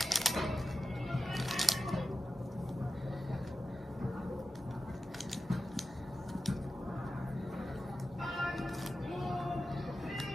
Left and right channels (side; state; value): both; normal; correlation 0.92